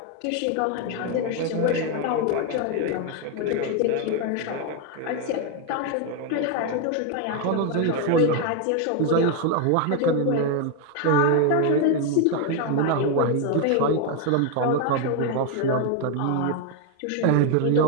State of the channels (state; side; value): different; both; correlation 0.01